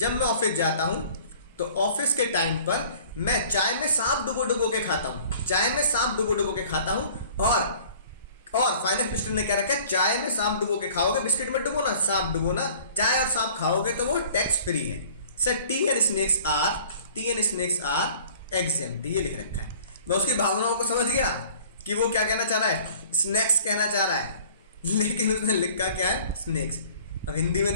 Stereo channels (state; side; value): inverted; both; correlation -0.50